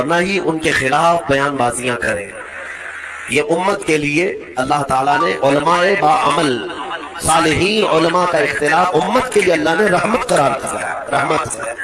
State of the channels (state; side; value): identical; both; correlation 1.00